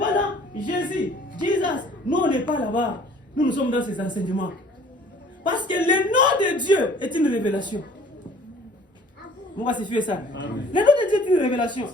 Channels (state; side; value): normal; both; correlation 0.52